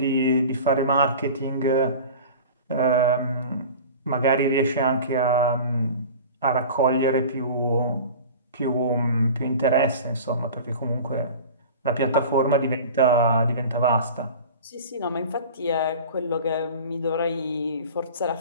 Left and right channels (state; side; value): inverted; both; correlation -0.37